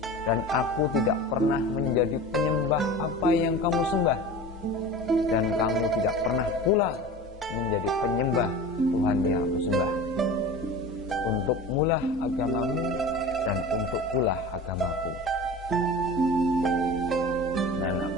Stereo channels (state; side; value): normal; both; correlation 0.35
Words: dan aku tidak pernah menjadi penyembah apa yang kamu sembah, dan kamu tidak pernah pula menjadi penyembah Tuhan yang aku sembah. Untuk mulah agamamu dan untuk pula agamaku.